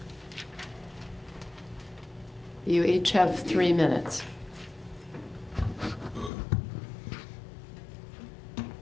You each have 3 minutes.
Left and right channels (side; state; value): right; drops out; at 6.3 s